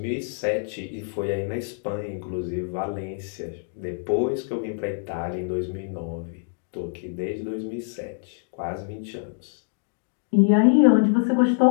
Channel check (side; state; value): right; silent; digital silence